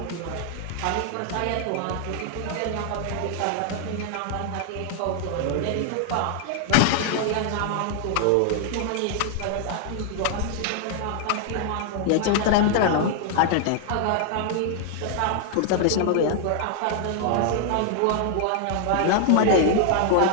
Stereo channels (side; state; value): both; different; correlation 0.00